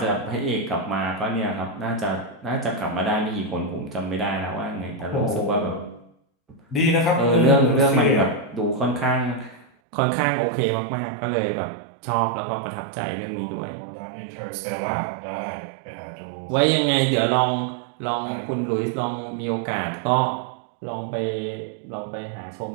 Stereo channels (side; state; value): left; drops out; at 9.7 s